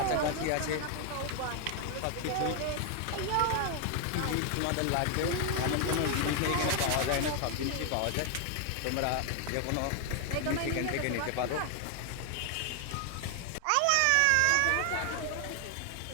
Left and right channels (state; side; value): different; both; correlation 0.00